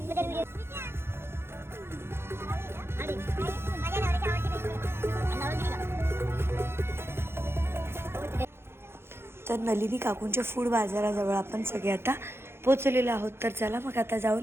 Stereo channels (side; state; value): left; late; 0.12 ms